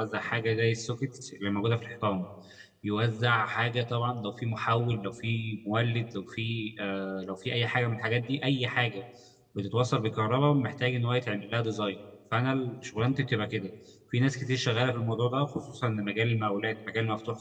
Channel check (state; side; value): identical; both; correlation 1.00